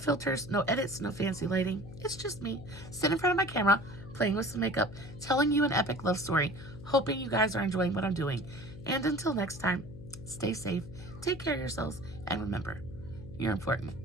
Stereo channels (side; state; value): left; noise; hum, 14 dB below the sound